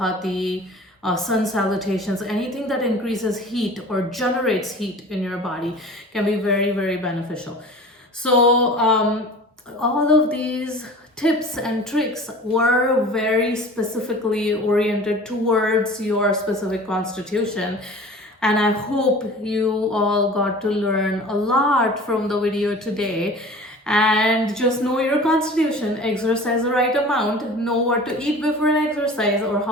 sun salutations. Anything that increases heat or generates heat in your body can be very, very beneficial. So all of these tips and tricks were very specifically oriented towards your specific constitution. And I hope you all got to learn a lot from the video today. And just know your constitution, exercise the right amount, know what to eat before an exercise, or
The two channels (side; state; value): both; normal; correlation 0.41